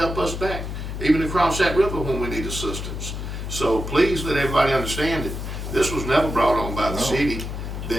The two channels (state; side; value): noise; left; hum, 6 dB below the sound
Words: us back, even across that river when we need assistance. So please let everybody understand that this was never brought on by the city